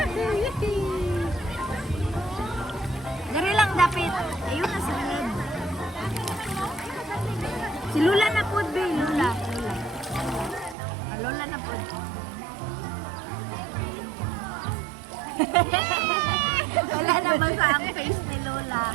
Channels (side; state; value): left; drops out; at 10.8 s